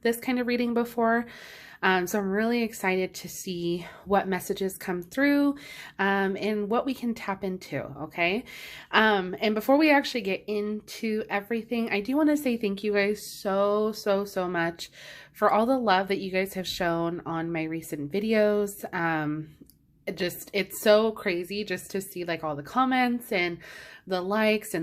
this kind of reading before. So I'm really excited to see what messages come through and what we can tap into, okay? And before we actually get into everything, I do want to say thank you guys so much for all the love that you guys have shown on my recent videos. It's so crazy just to see like all the comments and the likes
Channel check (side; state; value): both; identical; correlation 1.00